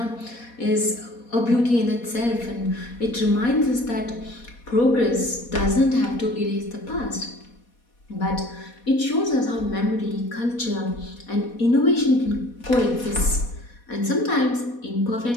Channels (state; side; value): late; right; 4.2 ms